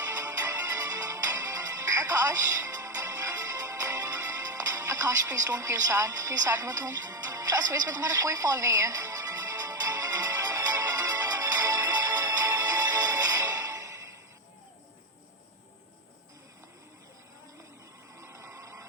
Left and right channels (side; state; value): both; normal; correlation 0.10